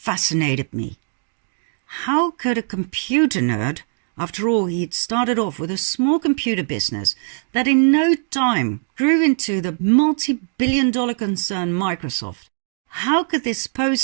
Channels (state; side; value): silent; left; 62 dB below the other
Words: me. How could a computer nerd, after all he'd started off with a small computer business that in no time grew into the multi-billion-dollar concern Microsoft, how could this